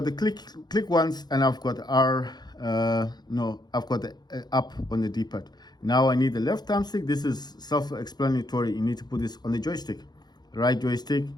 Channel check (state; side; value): late; right; 0.20 ms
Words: the click once, and I've got I've got the up on the D-pad. Now I need the left thumbstick. This is self-explanatory. You need to put this on the joystick. Right joystick,